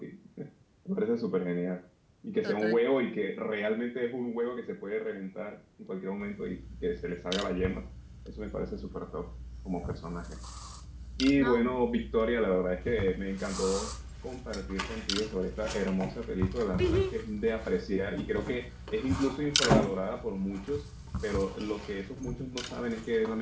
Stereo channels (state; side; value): identical; both; correlation 1.00